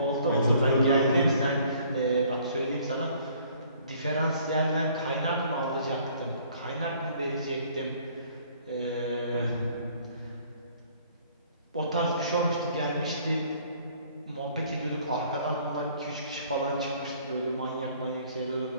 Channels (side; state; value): both; inverted; correlation -0.58